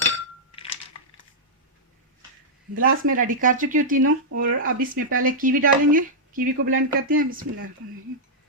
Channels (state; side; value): normal; both; correlation -0.08